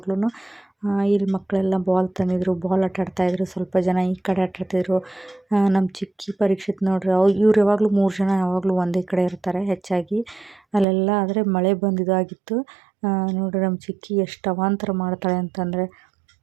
ಇಲ್ಲಿ ಮಕ್ಕಳೆಲ್ಲ ಬಾಲ್ ತಂದಿದ್ರು, ಬಾಲ್ ಆಟ ಆಡ್ತಾಯಿದ್ರು, ಸ್ವಲ್ಪ ಜನ ಈ ಕಡೆ ಆಟ ಆಡ್ತಿದ್ರು. ನಮ್ಮ ಚಿಕ್ಕಿ ಪರೀಕ್ಷಿತ್ ನೋಡ್ರಿ, ಇವ್ರು ಯಾವಾಗಲೂ 3 ಜನ ಯಾವಾಗಲೂ ಒಂದೇ ಕಡೆ ಇರ್ತಾರೆ ಹೆಚ್ಚಾಗಿ. ಅಲ್ಲೆಲ್ಲ ಆದರೆ ಮಳೆ ಬಂದಿದ್ದಾಗಿತ್ತು. ನೋಡ್ರಿ ನಮ್ಮ ಚಿಕ್ಕಿ ಎಷ್ಟು ಅವಾಂತರ ಮಾಡ್ತಾಳೆ ಅಂತಂದರೆ,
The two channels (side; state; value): left; drops out; at 10.9 s